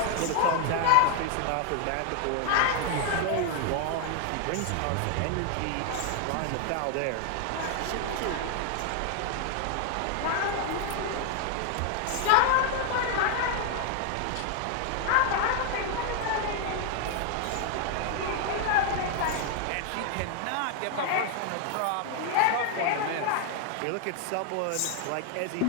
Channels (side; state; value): both; different; correlation 0.00